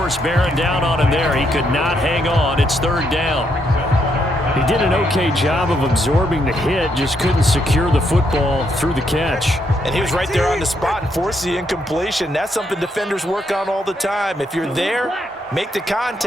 bearing down on him there. He could not hang on. It's 3rd down. He did an okay job of absorbing the hit, just couldn't secure the football through the catch. And he was right there on the spot and forced the incompletion. That's something defenders work on all the time. If you're there, make the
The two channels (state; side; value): normal; both; correlation 0.77